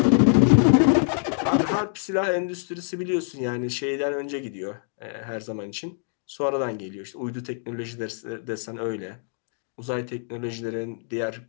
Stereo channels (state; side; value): silent; right; 62 dB below the other